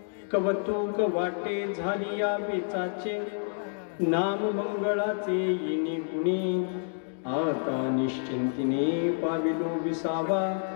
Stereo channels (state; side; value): silent; right; digital silence